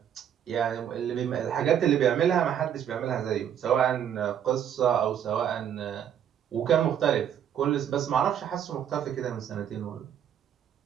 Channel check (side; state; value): left; quieter; 9.4 dB